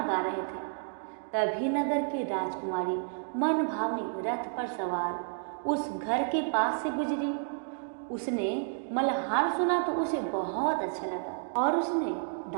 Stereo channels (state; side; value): silent; left; digital silence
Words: गा रहे थे। तभी नगर की राजकुमारी मन भावनी रथ पर सवार उस घर के पास से गुजरी। उसने मल्हार सुना तो उसे बहुत अच्छा लगा और उसने